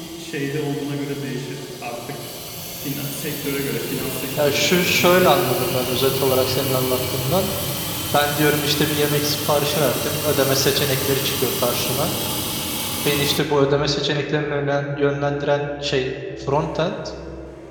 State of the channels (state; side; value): identical; both; correlation 1.00